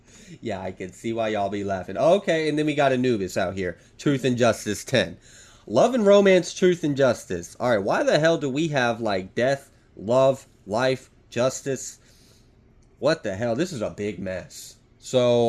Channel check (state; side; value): identical; both; correlation 1.00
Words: Yeah, I can see why y'all be laughing. Okay, and then we got Anubis out here. Truth and Justice 10. Love and romance, truth and justice. Alright, why the hell do we have like death, love, life, justice? What the hell? This is a big mess.